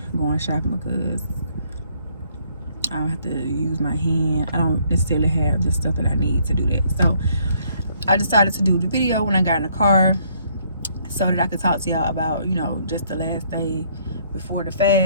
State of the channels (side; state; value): both; inverted; correlation -0.66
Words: going shopping because I don't have to use my hand. I don't necessarily have the stuff that I need to do that. So I decided to do the video when I got in the car, so that I could talk to y'all about, you know, just the last day before the